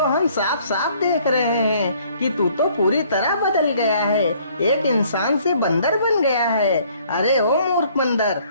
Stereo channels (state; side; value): inverted; both; correlation -0.61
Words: हम साफ साफ देख रहे हैं कि तू तो पूरी तरह बदल गया है, एक इंसान से बंदर बन गया है। अरे ओ मूर्ख बंदर,